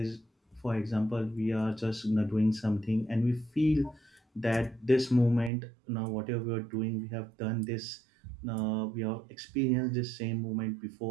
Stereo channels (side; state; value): left; drops out; at 5.5 s